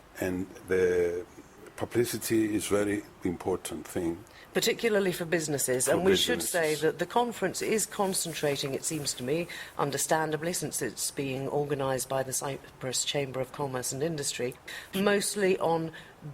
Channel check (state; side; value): identical; both; correlation 1.00